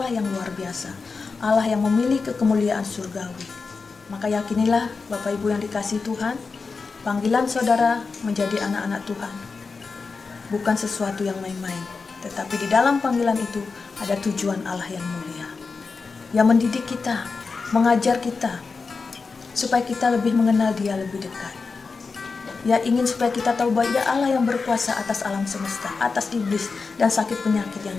yang luar biasa, Allah yang memiliki kemuliaan surgawi. Maka yakinilah Bapak Ibu yang dikasihi Tuhan, panggilan saudara menjadi anak-anak Tuhan bukan sesuatu yang main-main, tetapi di dalam panggilan itu ada tujuan Allah yang mulia, yang mendidik kita, mengajar kita, supaya kita lebih mengenal Dia lebih dekat. Ya, ingin supaya kita tahu bahwa Dia Allah yang berkuasa atas alam semesta, atas iblis dan sakit penyakit yang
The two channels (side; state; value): right; quieter; 4.6 dB